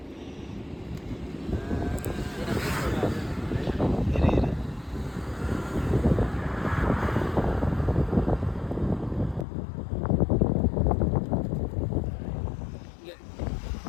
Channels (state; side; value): drops out; right; at 9.5 s